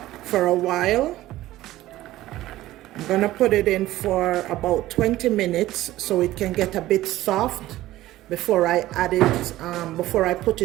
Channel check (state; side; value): quieter; left; 15.7 dB